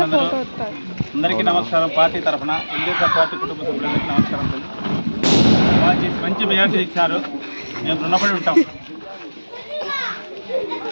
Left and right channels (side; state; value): both; inverted; correlation -1.00